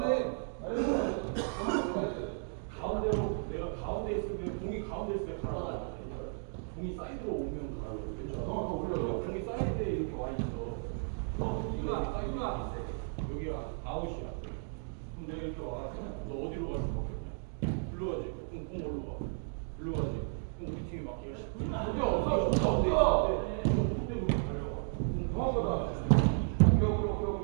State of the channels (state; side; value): silent; left; 55 dB below the other